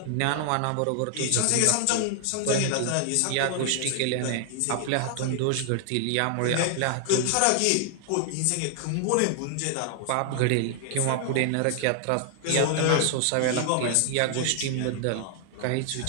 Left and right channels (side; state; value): both; different; correlation 0.00